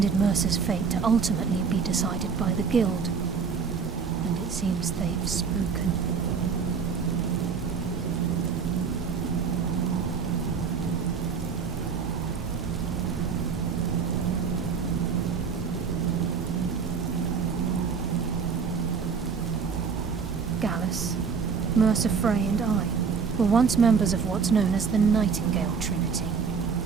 Mercer's fate to ultimately be decided by the Guild, and it seems they've spoken. Gallus, Mercer Frey and I were once members of what's known as the Nightingale Trinity.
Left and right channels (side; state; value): left; quieter; 5.9 dB